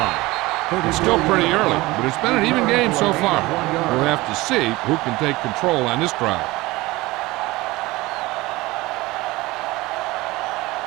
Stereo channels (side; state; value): left; quieter; 20.4 dB